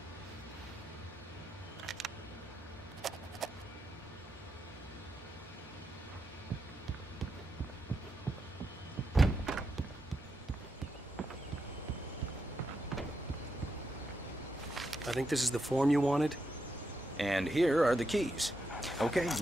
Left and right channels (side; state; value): both; normal; correlation 0.84